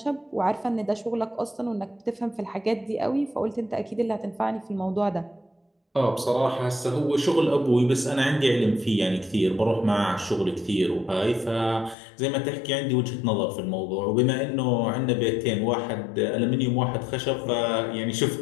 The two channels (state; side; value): drops out; right; at 12.0 s